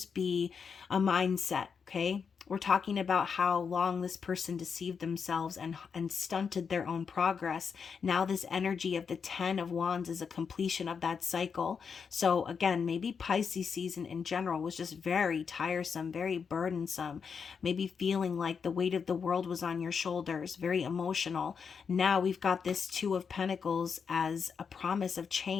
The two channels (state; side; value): quieter; right; 6.2 dB